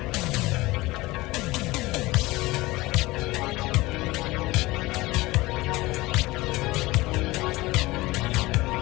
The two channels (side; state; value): right; quieter; 20.4 dB